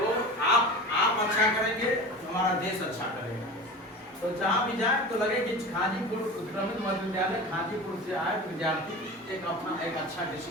आप अच्छा करेंगे तो हमारा देश अच्छा करेगा। तो जहाँ भी जाए तो लगे कि खाजीपुर उत्क्रमित मध्य विद्यालय खाजीपुर से आए विद्यार्थी एक अच्छा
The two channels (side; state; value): both; normal; correlation 0.33